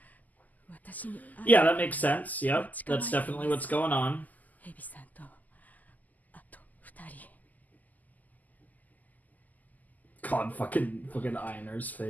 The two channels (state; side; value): late; right; 0.081 ms